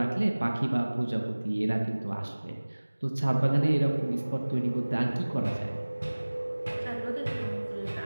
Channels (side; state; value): both; inverted; correlation -1.00